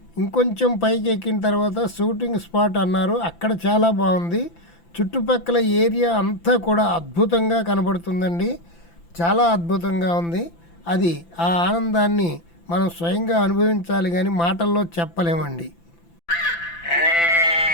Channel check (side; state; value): right; late; 5.9 ms